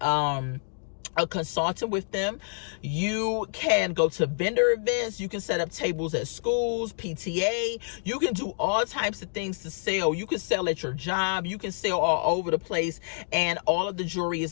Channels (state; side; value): silent; right; digital silence